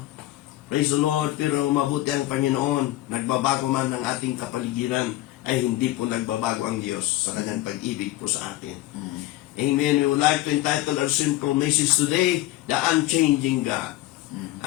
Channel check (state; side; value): quieter; right; 16.2 dB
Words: Praise the Lord. Pero mabuti ang Panginoon. Nagbabago man ang ating kapaligiran, ay hindi po nagbabago ang Diyos sa kanyang pag-ibig po sa atin. Amen. We would like to entitle our simple message today, The Unchanging God.